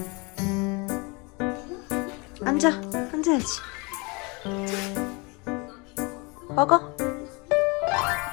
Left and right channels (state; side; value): quieter; right; 28.8 dB